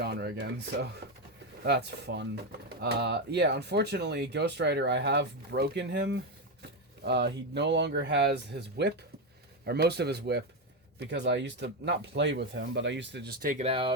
again, so that's fun. Yeah, unfortunately, Ghost Rider, I have broken him. He no longer has his whip, or most of his whip. Because I used to not play with him, but I used to just take it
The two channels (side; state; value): both; normal; correlation 0.09